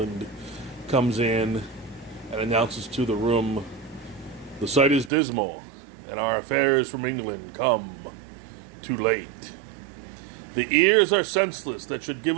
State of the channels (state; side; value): drops out; left; at 5.1 s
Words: comes in and announces to the room, "The sight is dismal, and our affairs from England come too late. The ears are senseless that should